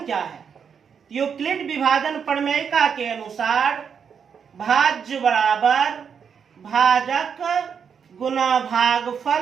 क्या है? यूक्लिड विभाजन प्रमेय का के अनुसार भाज्य बराबर भाजक गुना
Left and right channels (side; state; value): left; quieter; 7.0 dB